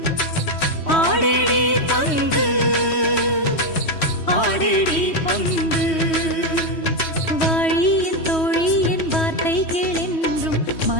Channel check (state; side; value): late; right; 3.1 ms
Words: ஆடேடி பந்து ஆடேடி பந்து. வாழியின் தோழியின் வார்த்தை கேளென்றும்